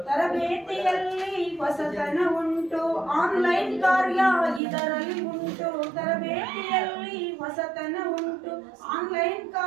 ತರಬೇತಿಯಲ್ಲಿ ಹೊಸತನ ಉಂಟು, ಆನ್ಲೈನ್ ಕಾರ್ಯ ಇದರಲ್ಲಿ ಉಂಟು. ತರಬೇತಿಯಲ್ಲಿ ಹೊಸತನ ಉಂಟು, ಆನ್ಲೈನ್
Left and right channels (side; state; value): left; drops out; at 4.6 s